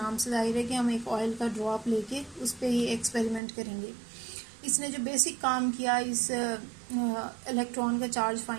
से जाहिर है कि हम एक ऑयल का ड्रॉप लेके उस पर ही एक्सपेरिमेंट करेंगे। इसने जो बेसिक काम किया इस इलेक्ट्रॉन का चार्ज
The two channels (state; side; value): drops out; left; at 3.4 s